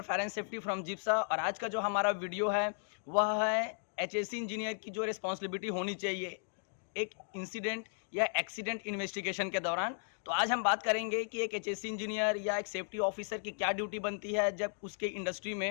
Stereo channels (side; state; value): right; silent; digital silence